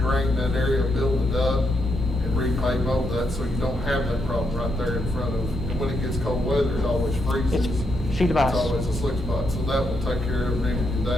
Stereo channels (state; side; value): normal; both; correlation 0.80